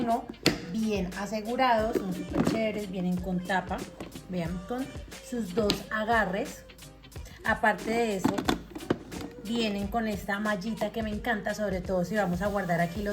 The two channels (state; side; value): identical; both; correlation 1.00